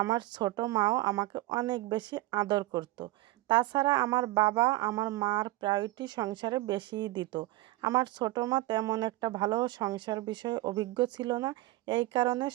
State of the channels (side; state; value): left; quieter; 18.3 dB